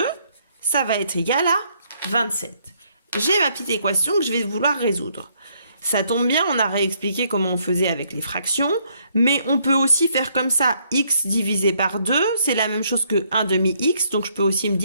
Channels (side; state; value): both; inverted; correlation -0.70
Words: ça va être égal à 27. J'ai ma petite équation que je vais vouloir résoudre. Ça tombe bien, on a réexpliqué comment on faisait avec les fractions, mais on peut aussi faire comme ça, x divisé par 2, c'est la même chose que 1 demi x, donc je peux aussi me